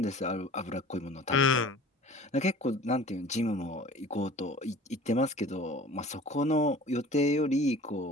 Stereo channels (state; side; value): normal; both; correlation 0.44